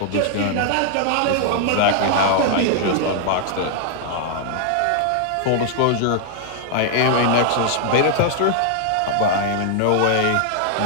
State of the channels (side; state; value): both; different; correlation 0.00